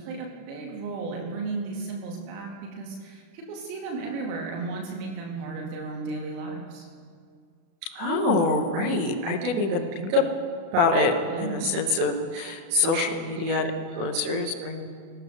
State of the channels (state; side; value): late; left; 36 ms